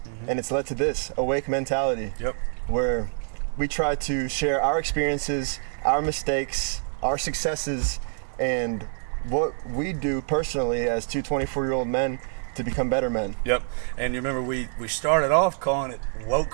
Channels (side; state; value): left; silent; 61 dB below the other